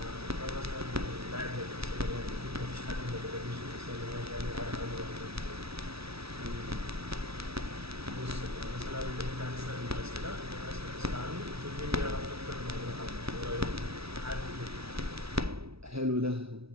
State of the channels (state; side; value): late; left; 0.77 ms